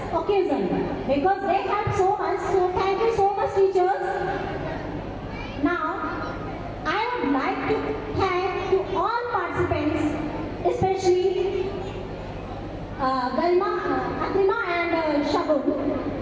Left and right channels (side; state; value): both; identical; correlation 1.00